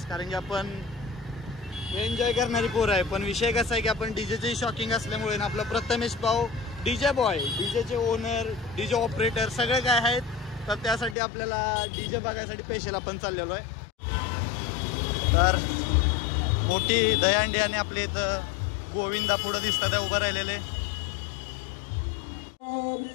कारण की आपण एन्जॉय करणारी पोर आहे। पण विषय कसा आहे की आपण डीजेची शॉकिंग असल्यामुळे ना आपला प्रथमेश भाऊ डीजे बॉय, डीजेचे ओनर, डीजे ऑपरेटर सगळे काय आहेत, तर त्यासाठी आपल्याला डीजे बघायसाठी स्पेशल आपण चाललेलो आहे। तर मोठी दहीहंडी आणि आपले इथं गोविंदा पुढे दिसतात उभं राहिलेले।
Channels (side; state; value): right; drops out; at 11.2 s